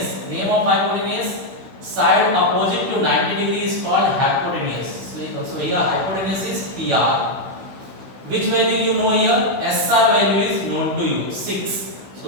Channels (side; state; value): left; late; 16 ms